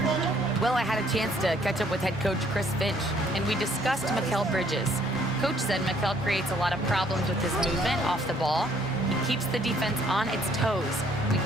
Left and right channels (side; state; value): both; normal; correlation 0.63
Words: Well, I had a chance to catch up with head coach Chris Finch, and we discussed Mikal Bridges. Coach said Mikal creates a lot of problems with his movement off the ball. He keeps the defense on its toes. We